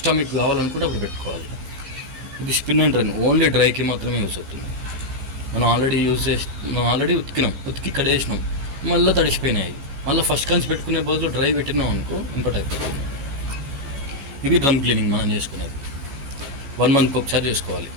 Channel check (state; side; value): late; left; 14 ms